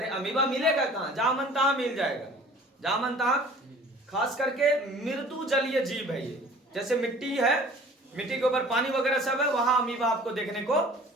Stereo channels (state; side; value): normal; both; correlation 0.48